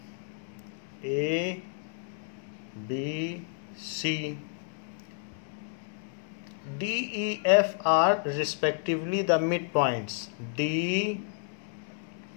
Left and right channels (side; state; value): right; silent; 57 dB below the other